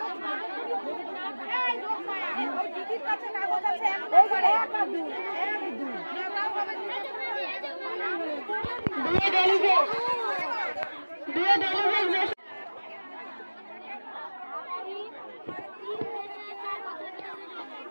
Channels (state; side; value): inverted; both; correlation -1.00